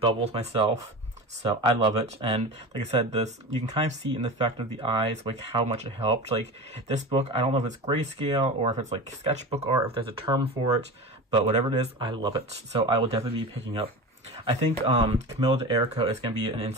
myself. So I love it, and like I said, you can kind of see in the effect of the eyes, how much it helped. This book, I don't know if it's grayscale or if it's sketchbook art, if there's a term for it, but whatever it is, I love it. So I will definitely be picking up. I think Camilla DeErico is going to be an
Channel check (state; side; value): normal; both; correlation 0.29